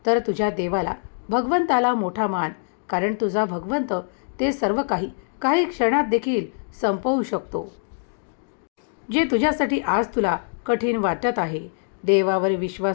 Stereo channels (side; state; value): right; silent; digital silence